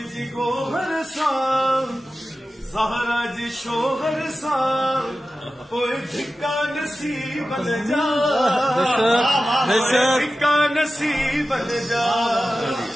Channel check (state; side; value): normal; both; correlation 0.94